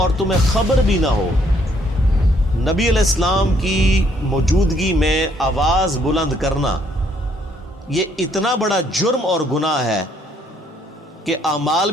تمہیں خبر بھی نہ ہو. نبی علیہ السلام کی موجودگی میں آواز بلند کرنا یہ اتنا بڑا جرم اور گناہ ہے کہ اعمال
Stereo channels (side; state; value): both; normal; correlation 0.68